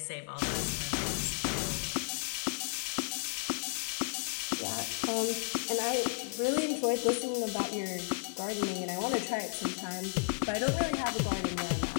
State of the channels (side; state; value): right; silent; digital silence